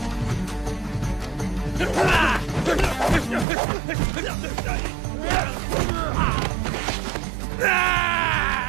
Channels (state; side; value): drops out; left; at 3.5 s